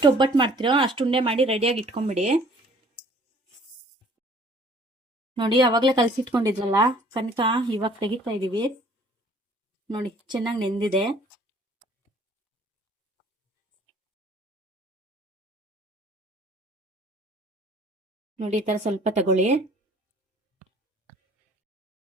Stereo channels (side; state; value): both; normal; correlation 0.55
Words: ಒಬ್ಬಟ್ಟು ಮಾಡ್ತೀರೋ ಅಷ್ಟು ಉಂಡೆ ಮಾಡಿ ರೆಡಿಯಾಗಿ ಇಟ್ಕೊಂಬಿಡಿ. ನೋಡಿ ಅವಾಗಲೇ ಕಲಸಿಟ್ಕೊಂಡಿದ್ರಲ್ಲ ಕನಕ, ಇವಾಗ ತೆಗಿತಾ ಇದೀವಿ. ನೋಡಿ ಚೆನ್ನಾಗಿ ನೆಂದಿದೆ. ನೋಡಿ ಈ ತರ ಸ್ವಲ್ಪ ತಗೊಳ್ಳಿ.